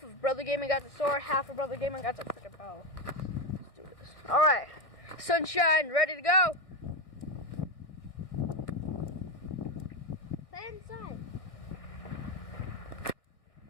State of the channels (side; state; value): right; late; 1.6 ms